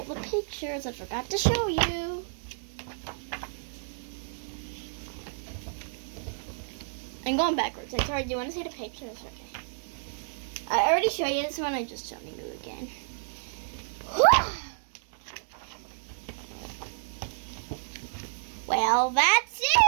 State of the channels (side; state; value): left; silent; digital silence